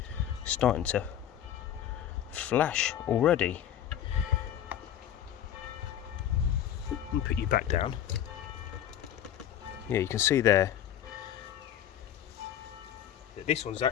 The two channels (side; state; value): right; quieter; 10.5 dB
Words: starting to flash already. Let me put you back down. Yeah, you can see there that this one's